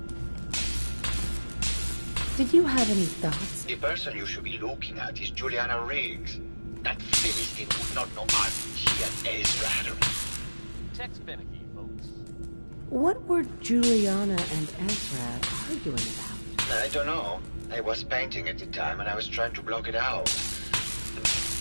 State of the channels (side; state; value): both; inverted; correlation -1.00